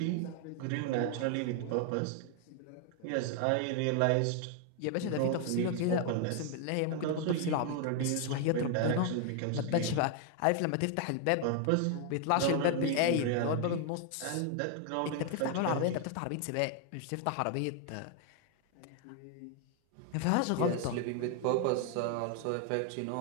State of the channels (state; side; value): different; both; correlation 0.00